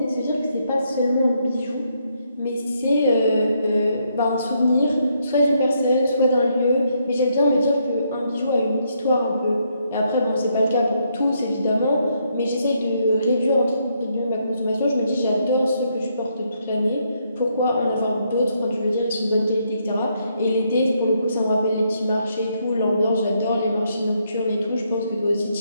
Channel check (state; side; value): inverted; both; correlation -0.75